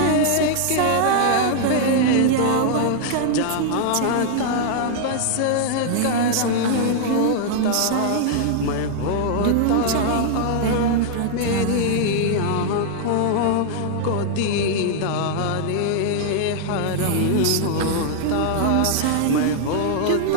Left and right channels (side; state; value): both; different; correlation -0.01